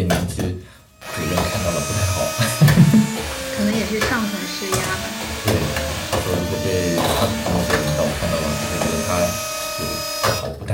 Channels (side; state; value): both; identical; correlation 1.00